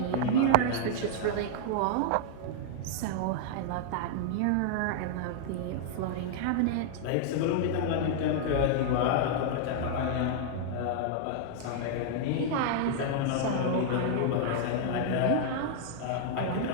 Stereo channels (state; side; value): different; both; correlation -0.01